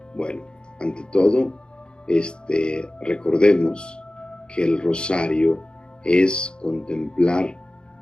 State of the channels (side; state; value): right; late; 0.050 ms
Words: Bueno, ante todo, recordemos que el rosario es contemplar